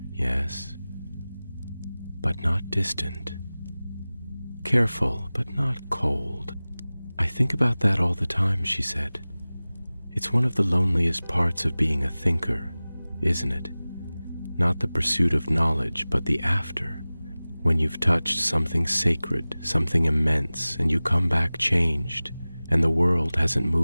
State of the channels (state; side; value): inverted; both; correlation -0.98